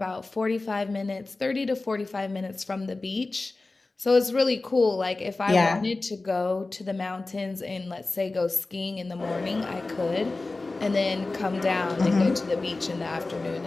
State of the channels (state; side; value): quieter; right; 3.3 dB